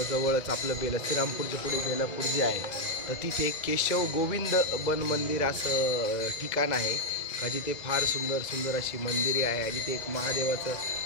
जवळच आपलं श्रीरामपूरच्या पुढे बेलापूर जे आहे तर तिथे केशव गोविंद बन मंदिर असं ठिकाण आहे का जिथे फार सुंदर अशी मंदिरे आहे आणि ते एक महादेवाचं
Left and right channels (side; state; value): right; late; 2.0 ms